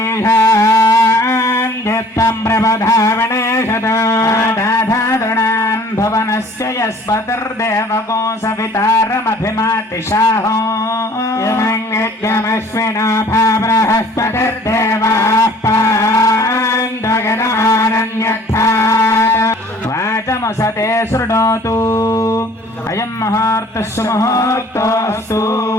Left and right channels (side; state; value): both; normal; correlation 0.52